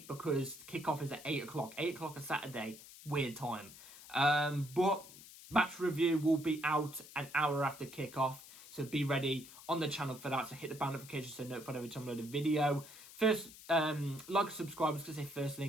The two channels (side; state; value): left; noise; hiss, 17 dB below the sound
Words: because kickoff is at 8 o'clock. 8 o'clock on Saturday. Weird time. But match review will be out an hour after kickoff, so be ready on the channel for that. So hit the bell notification so notified every time I upload a video. First, like and subscribe. I was going to say first